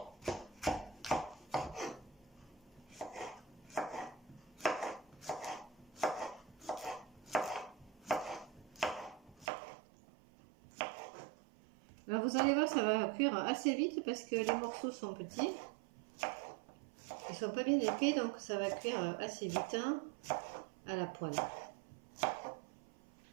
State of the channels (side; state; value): left; drops out; at 9.5 s